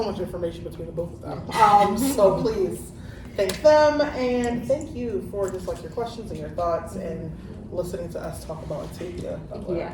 much information between the both of them. So please thank them, and thank you for just like your questions and your thoughts and listening to us talk about Octavia Butler. Yeah,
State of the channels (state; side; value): identical; both; correlation 1.00